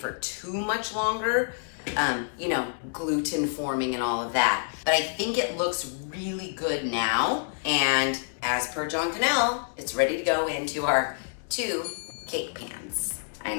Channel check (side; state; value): right; silent; digital silence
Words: too much longer. You know, gluten forming and all of that. But I think it looks really good now, and as per John Kanell, it's ready to go into our 2 cake pans. I